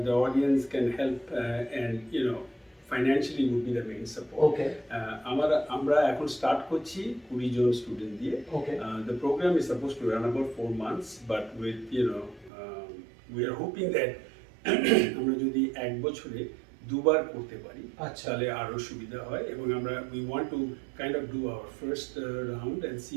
audience can help, and financially would be the main support. Okay. আমরা এখন start করছি 20 জন student দিয়ে। Okay. The program is supposed to run about 4 months, but with we are hoping that আমরা যদি এক বছরে দুবার করতে পারি আচ্ছা। তাহলে আরো সুবিধা হয়, এবং আমরা we want to kind of do our first round and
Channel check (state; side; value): drops out; left; at 12.5 s